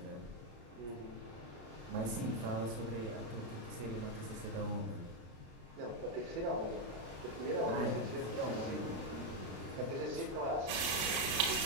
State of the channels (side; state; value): left; late; 33 ms